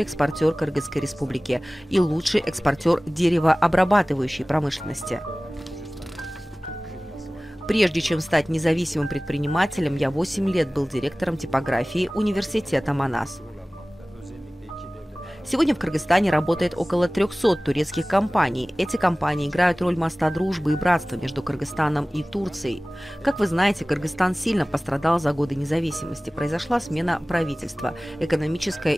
экспортер Кыргызской республики» и «Лучший экспортер деревообрабатывающей промышленности». Прежде чем стать независимым предпринимателем, я 8 лет был директором типографии университета Манас. Сегодня в Кыргызстане работает около 300 турецких компаний. Эти компании играют роль моста дружбы и братства между Кыргызстаном и Турцией. Как вы знаете, Кыргызстан сильно пострадал за годы независимости. Произошла смена правительства. Экономическая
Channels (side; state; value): both; normal; correlation 0.98